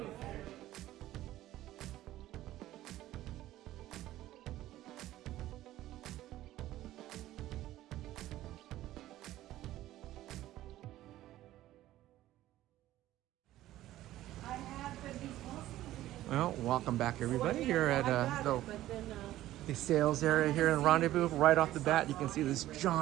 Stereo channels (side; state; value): left; quieter; 14.6 dB